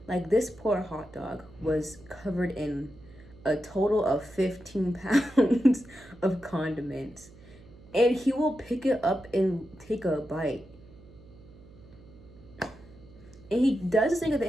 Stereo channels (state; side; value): noise; right; hum, 22 dB below the sound